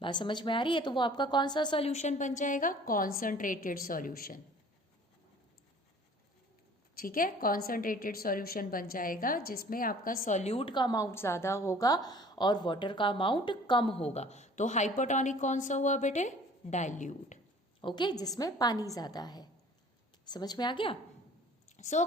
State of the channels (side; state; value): both; normal; correlation 0.50